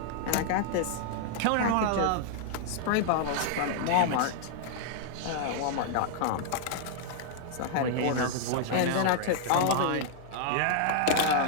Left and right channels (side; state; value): both; different; correlation 0.00